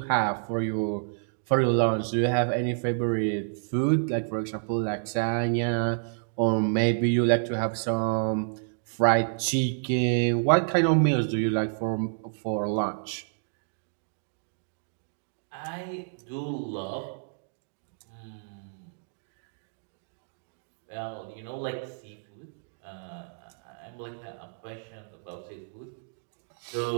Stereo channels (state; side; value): silent; left; digital silence